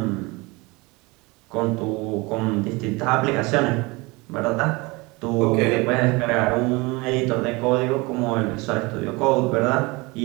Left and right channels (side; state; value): left; quieter; 24.9 dB